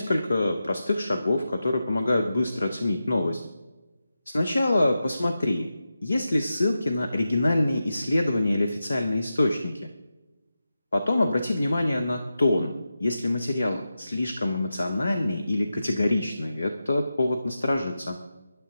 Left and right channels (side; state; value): both; inverted; correlation -0.91